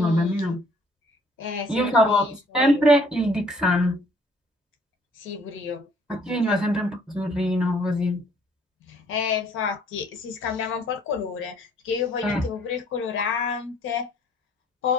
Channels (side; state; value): both; normal; correlation 0.60